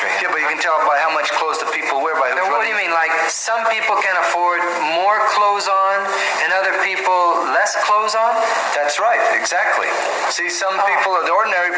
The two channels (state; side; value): identical; both; correlation 1.00